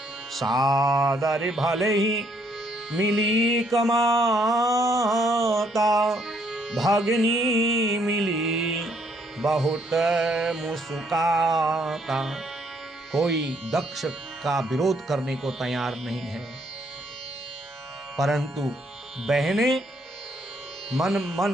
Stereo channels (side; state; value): both; normal; correlation 0.70